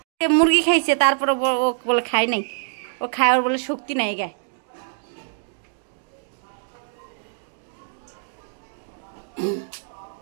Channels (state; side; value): silent; left; digital silence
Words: মুরগি খাইছে, তারপরে ও বলে খাই নাই, ও খায়, ওর বলে শক্তি নাই গায়ে।